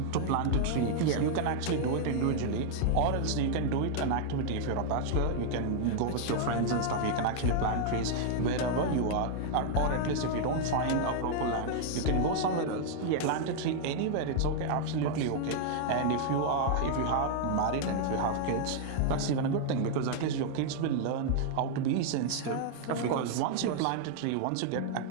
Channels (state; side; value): different; both; correlation -0.01